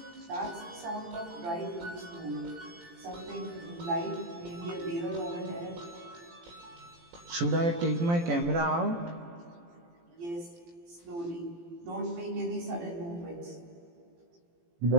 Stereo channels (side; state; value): left; late; 18 ms